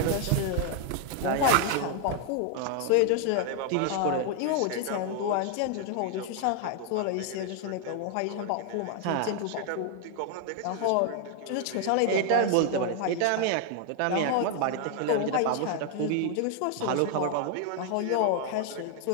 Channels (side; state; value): both; different; correlation 0.00